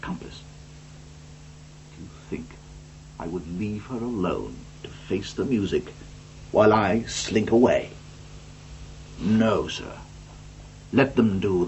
accomplice. Do you think I would leave her alone to face the music while I slink away? No, sir. Let them do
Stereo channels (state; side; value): identical; both; correlation 1.00